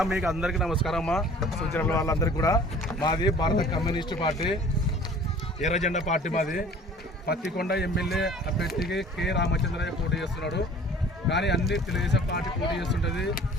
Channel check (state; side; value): normal; both; correlation 0.48